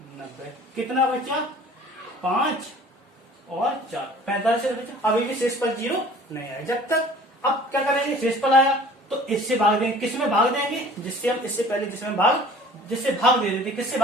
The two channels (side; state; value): both; normal; correlation 0.48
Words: 90, कितना बचा, 5 और 4, 45 से बचा। अभी भी शेषफल 0 नहीं आया। जब तक अब क्या करेंगे, शेषफल आया तो इससे भाग देंगे, किसमें भाग देंगे, जिससे हम इससे पहले जिसमें जिससे भाग दे देते, किससे